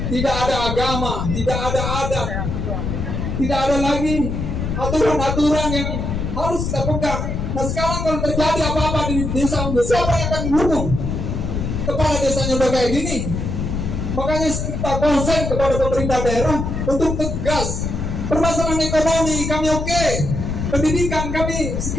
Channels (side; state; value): left; noise; rumble, 2 dB below the sound